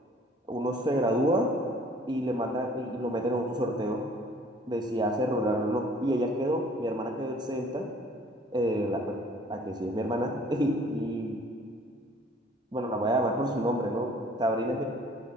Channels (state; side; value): normal; both; correlation 0.54